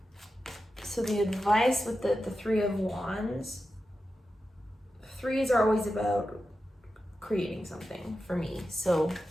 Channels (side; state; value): both; normal; correlation 0.91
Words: So the advice with the Three of Wands, threes are always about creating something for me. So